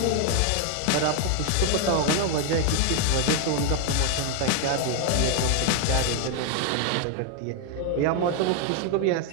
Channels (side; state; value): both; different; correlation 0.01